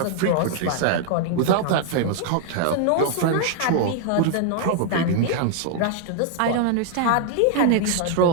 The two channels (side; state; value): both; different; correlation 0.00